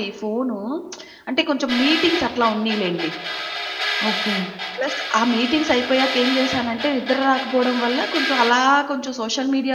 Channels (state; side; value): identical; both; correlation 1.00